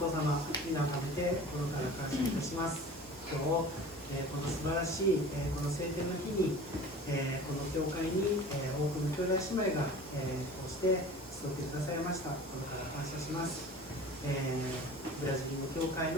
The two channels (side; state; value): both; normal; correlation 0.41